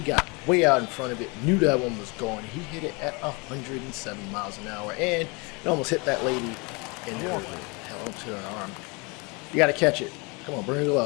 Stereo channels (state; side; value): quieter; right; 29.1 dB